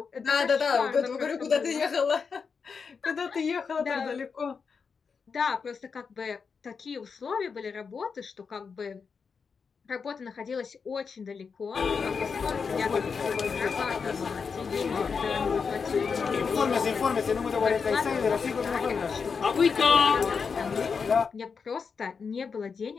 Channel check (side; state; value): right; quieter; 5.6 dB